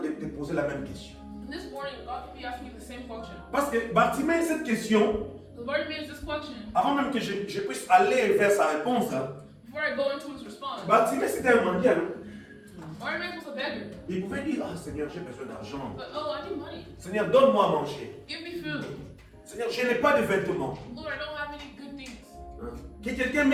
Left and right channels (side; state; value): both; identical; correlation 1.00